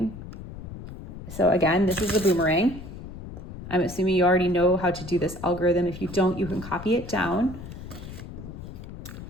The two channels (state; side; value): noise; left; rumble, 12 dB below the sound